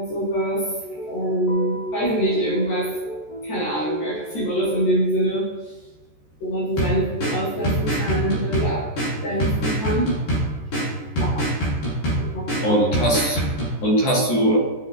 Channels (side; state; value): right; late; 14 ms